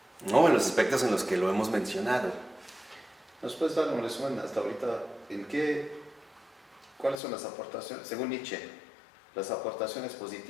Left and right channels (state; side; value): drops out; right; at 7.2 s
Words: ¿no? En los aspectos en los que lo hemos mencionado. ¿Nos puedes dar un resumen hasta ahorita cuáles son las aportaciones, según Nietzsche, las aportaciones